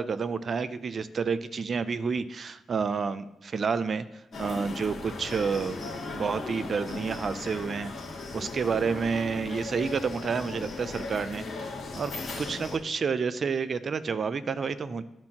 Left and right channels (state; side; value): quieter; left; 4.2 dB